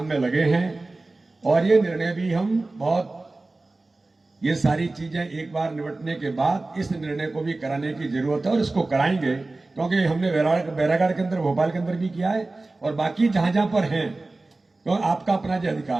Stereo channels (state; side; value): quieter; left; 3.2 dB